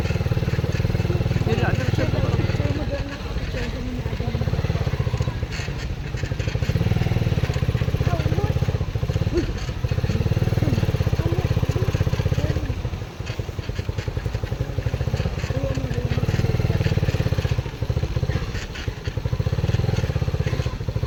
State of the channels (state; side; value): identical; both; correlation 1.00